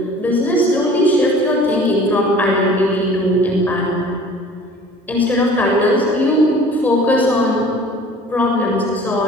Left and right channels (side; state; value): both; normal; correlation 0.48